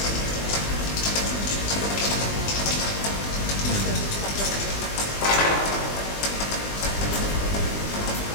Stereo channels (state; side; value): late; right; 20 ms